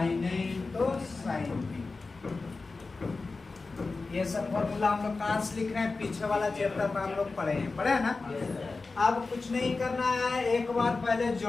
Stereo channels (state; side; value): quieter; right; 3.9 dB